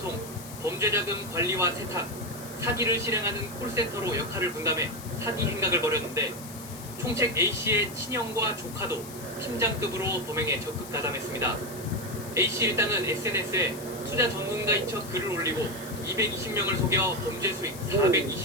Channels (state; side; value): noise; left; hiss, 14 dB below the sound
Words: 범죄자금 관리와 세탁, 사기를 실행하는 콜센터로 역할을 분담해 사기 행각을 벌였는데 총책 A씨의 친형과 조카도 팀장급으로 범행에 적극 가담했습니다. A씨 일당은 SNS에 투자 전문가인 척 글을 올리고 220명을 속여 범죄 수익